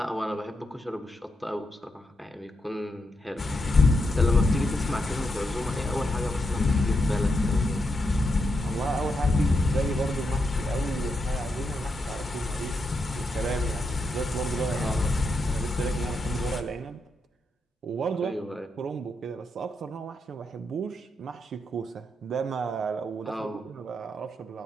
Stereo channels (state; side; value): normal; both; correlation 0.83